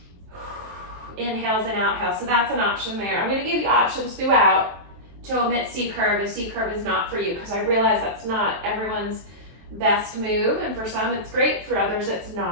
inhales and outhales. So that's an option there. I'm going to give you options throughout to omit C curve if C curve is not for you, because I realize that's not everyone's best move, and for some it's great, for others it's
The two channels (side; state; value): left; late; 23 ms